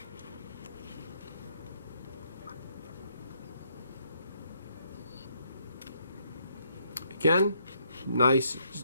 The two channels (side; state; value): both; inverted; correlation -0.72